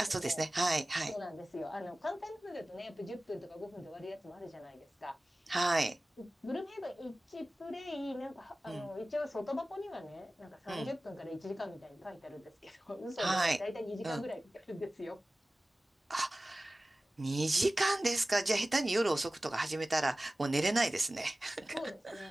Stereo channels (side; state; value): both; normal; correlation 0.97